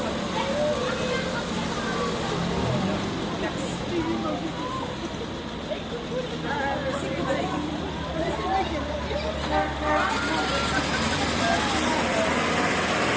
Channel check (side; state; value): both; identical; correlation 1.00